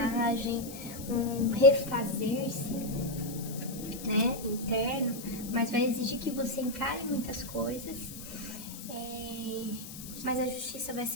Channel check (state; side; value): noise; left; hiss, 12 dB below the sound